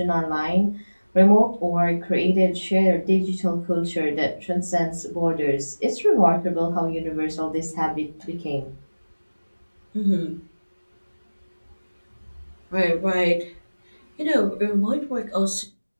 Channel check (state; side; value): inverted; both; correlation -1.00